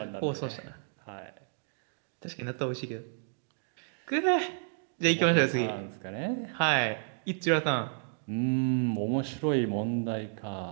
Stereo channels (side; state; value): left; silent; digital silence